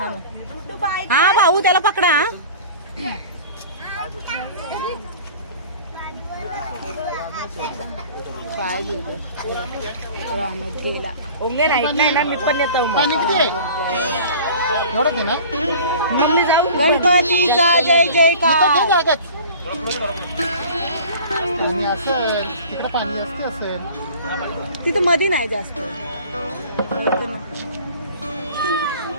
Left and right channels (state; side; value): inverted; both; correlation -0.43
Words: हा भाऊ त्याला पकडा. पाय राहण्यात गेला. ओंगे नाही ना मी पण येतो. मग जाऊ. गणपतीचा जय जयकार. पाणी असेल तिकडे, पाणी असते असेल तिथं मध्ये नाही जास्त.